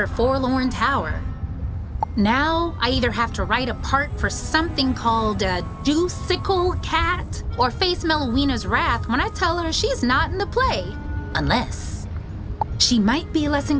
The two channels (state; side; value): identical; both; correlation 1.00